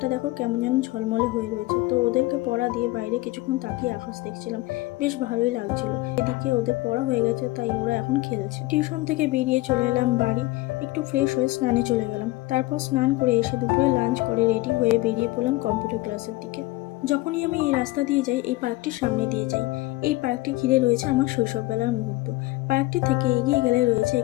দেখো কেমন যেন ঝলমলে হয়ে রয়েছে। তো ওদেরকে পড়া দিয়ে বাইরে কিছুক্ষণ তাকিয়ে আকাশ দেখছিলাম, বেশ ভালোই লাগছিল। এদিকে ওদের পড়া হয়ে গেছে, তাই ওরা এখন খেলছে। টিউশন থেকে বেরিয়ে চলে এলাম বাড়ি, একটু ফ্রেশ হয়ে স্নানে চলে গেলাম। তারপর স্নান করে এসে দুপুরে লাঞ্চ করে রেডি হয়ে বেরিয়ে পড়লাম কম্পিউটার ক্লাসের দিকে। যখনই আমি এই রাস্তা দিয়ে যাই, এই পার্কটির সামনে দিয়ে যাই। এই পার্কটি ঘিরে রয়েছে আমার শৈশববেলার মুহূর্ত। পার্কটি থেকে এগিয়ে গেলে রয়েছে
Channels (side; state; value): right; quieter; 19.5 dB